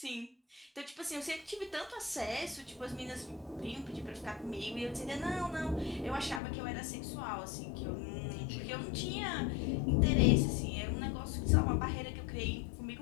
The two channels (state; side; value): drops out; right; at 6.4 s